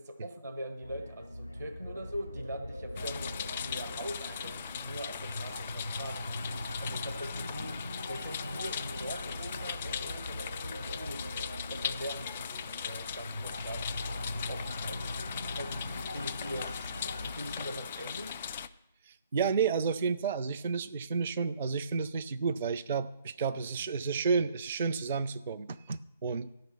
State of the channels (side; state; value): both; inverted; correlation -0.65